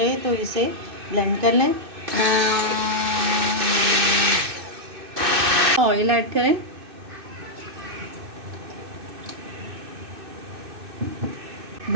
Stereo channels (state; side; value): late; left; 2.6 ms